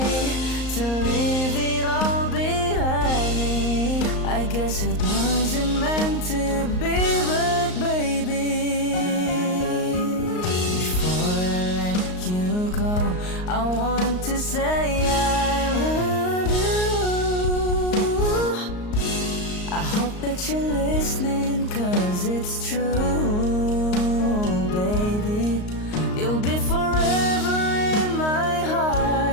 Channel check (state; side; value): late; right; 38 ms